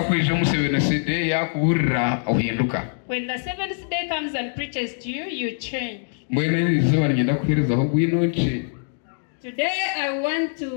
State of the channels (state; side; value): silent; right; digital silence